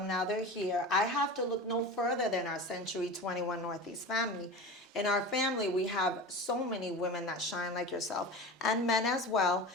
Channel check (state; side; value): normal; both; correlation 0.31